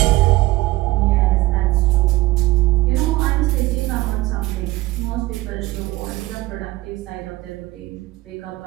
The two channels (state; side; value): quieter; left; 18.5 dB